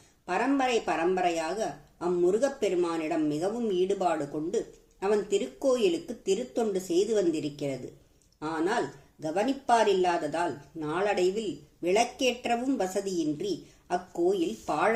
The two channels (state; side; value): identical; both; correlation 1.00